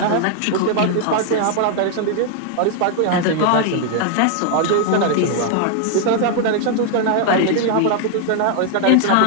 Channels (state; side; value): different; both; correlation 0.00